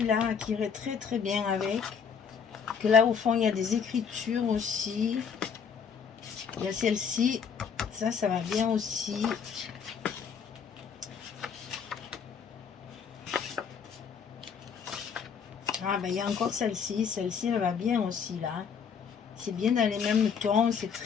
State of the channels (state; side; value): quieter; right; 6.6 dB